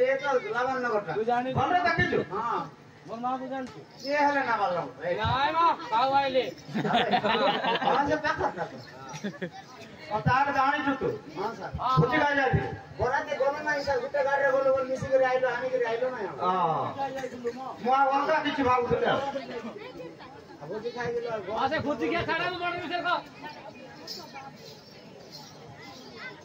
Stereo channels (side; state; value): both; identical; correlation 1.00